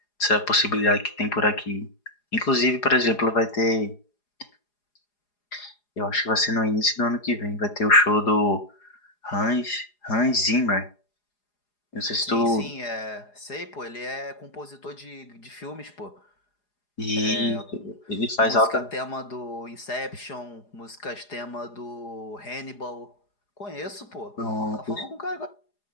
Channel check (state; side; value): late; right; 4.9 ms